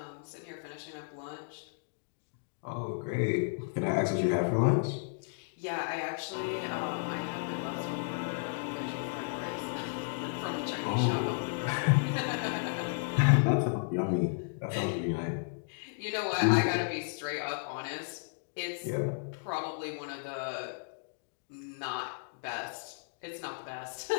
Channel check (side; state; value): right; silent; digital silence